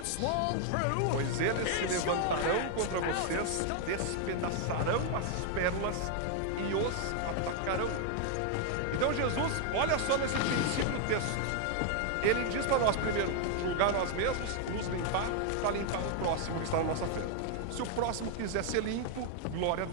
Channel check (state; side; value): different; both; correlation 0.00